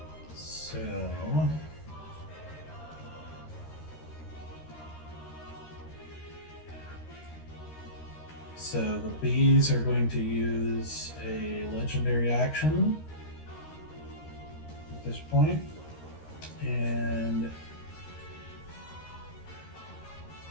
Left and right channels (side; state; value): right; late; 13 ms